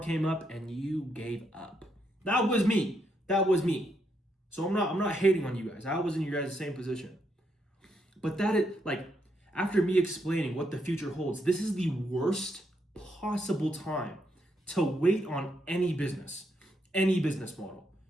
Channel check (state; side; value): normal; both; correlation 0.78